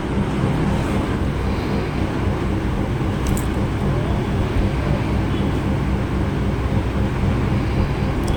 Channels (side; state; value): both; identical; correlation 1.00